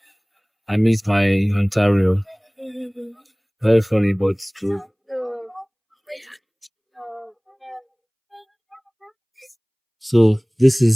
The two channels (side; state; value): both; identical; correlation 1.00